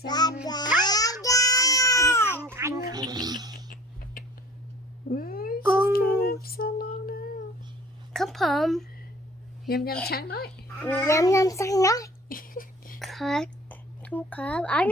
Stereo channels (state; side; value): normal; both; correlation 0.47